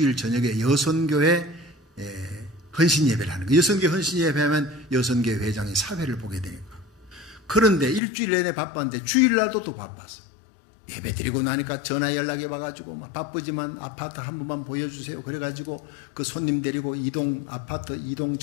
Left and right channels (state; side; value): drops out; right; at 8.0 s